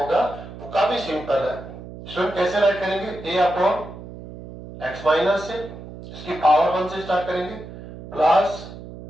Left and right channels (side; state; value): right; noise; hum, 14 dB below the sound